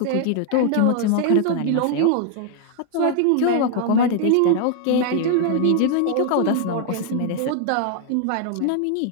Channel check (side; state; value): both; different; correlation 0.00